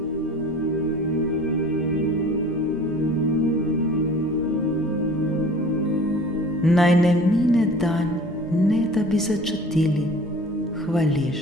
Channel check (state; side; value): normal; both; correlation 0.45